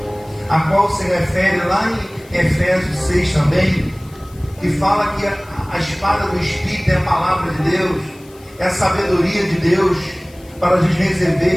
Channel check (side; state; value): left; noise; hiss, 26 dB below the sound